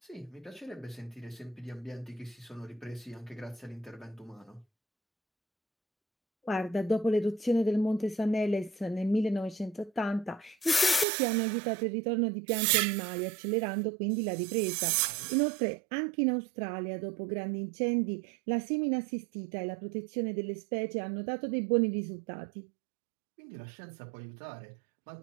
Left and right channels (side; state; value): left; drops out; at 11.1 s